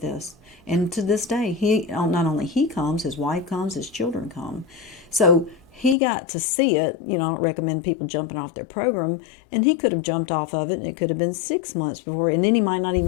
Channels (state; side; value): drops out; right; at 6.0 s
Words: And to this day, not only he comes, his wife comes, his children come. So he got to see it. I don't recommend people jumping off their program. And he could have jumped off of it, and it could have been 6 months before. And then he might not